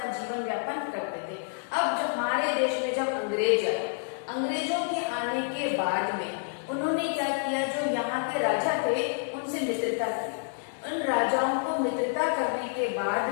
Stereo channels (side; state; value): right; silent; digital silence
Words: जीवन व्यापन करते थे। अब जब हमारे देश में जब अंग्रेज आए, अंग्रेजों के आने के बाद में उन्होंने क्या किया? जो यहाँ के राजा थे उनसे मित्रता की। उन राजाओं को मित्रता करने के बाद